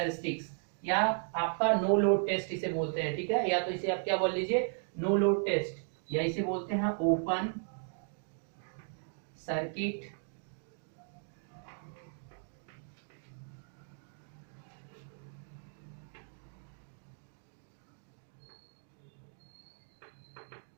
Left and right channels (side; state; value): left; silent; 54 dB below the other